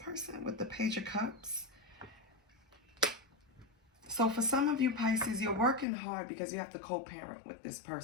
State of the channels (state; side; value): drops out; right; at 5.9 s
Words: with the Page of Cups? So for some of you Pisces, you're working hard because you have to co-parent with this